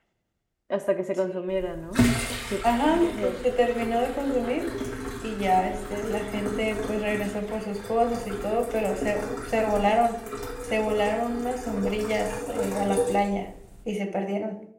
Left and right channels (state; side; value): identical; both; correlation 1.00